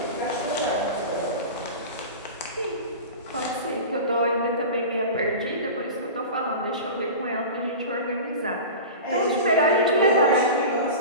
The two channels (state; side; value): inverted; both; correlation -0.31